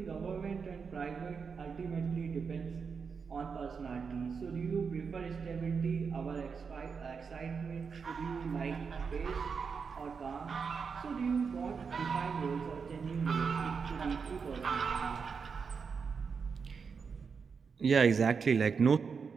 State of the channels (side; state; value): left; quieter; 5.7 dB